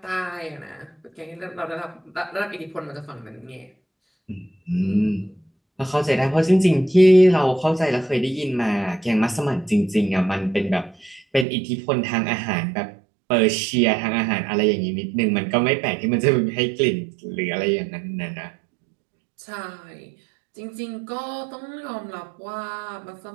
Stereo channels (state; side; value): drops out; left; at 11.5 s